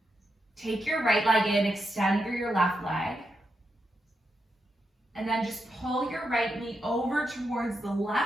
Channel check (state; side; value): normal; both; correlation 0.84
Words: Take your right leg in, extend through your left leg. And then just pull your right knee over towards the